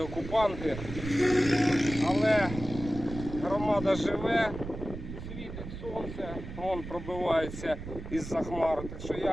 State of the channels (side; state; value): right; noise; rumble, 10 dB below the sound